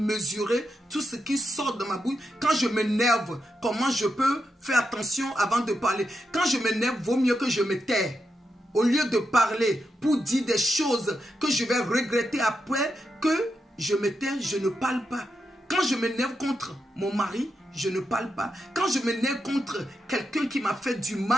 tout ce qui sort de ma bouche? Quand je m'énerve, comment je peux faire attention avant de parler? Quand je m'énerve, vaut mieux que je me taise. Au lieu de parler pour dire des choses que je vais regretter après, que je me tais, je ne parle pas. Quand je m'énerve contre mon mari, je ne parle pas. Quand je m'énerve contre quelqu'un qui m'a fait du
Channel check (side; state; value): both; normal; correlation 0.85